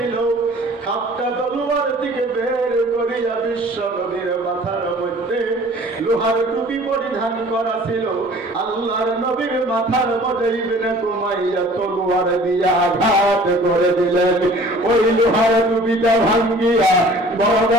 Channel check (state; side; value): normal; both; correlation 0.49